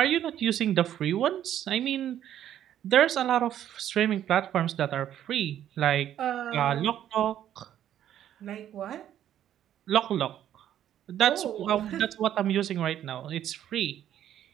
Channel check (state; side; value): quieter; left; 11.0 dB